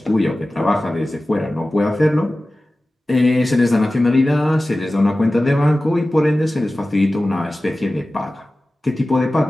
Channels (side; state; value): both; normal; correlation 0.96